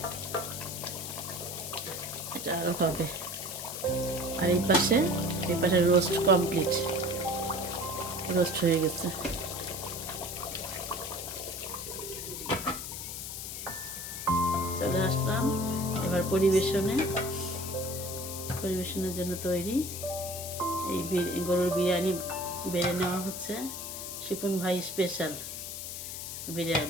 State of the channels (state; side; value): noise; left; hiss, 7 dB below the sound